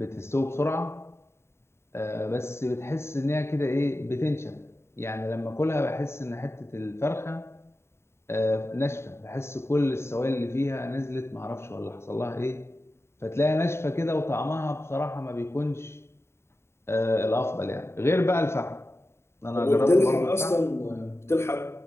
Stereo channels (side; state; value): right; late; 0.12 ms